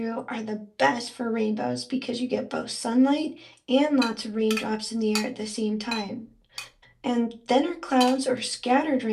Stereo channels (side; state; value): both; identical; correlation 1.00